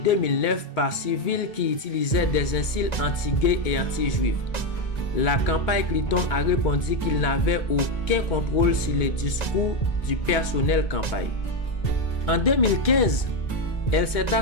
par Civil qui utilisaient des insultes anti-gays et anti-juifs. La campagne Clinton a répondu qu'il n'avait aucun contrôle sur les discours du personnel campagne. En 2015, elle s'est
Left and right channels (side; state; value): right; late; 2.2 ms